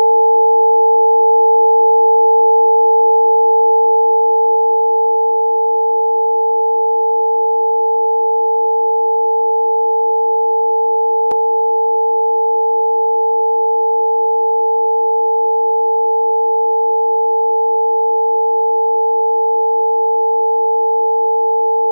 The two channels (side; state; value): both; inverted; correlation -1.00